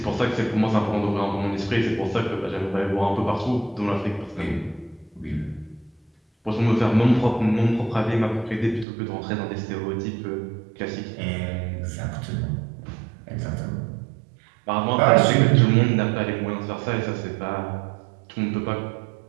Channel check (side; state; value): left; drops out; at 8.8 s